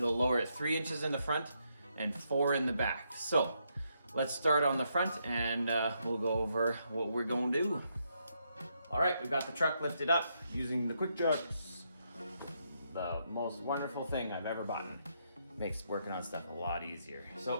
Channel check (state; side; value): inverted; both; correlation -0.78